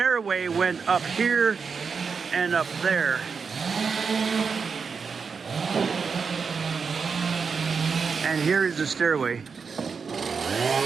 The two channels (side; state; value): left; quieter; 5.6 dB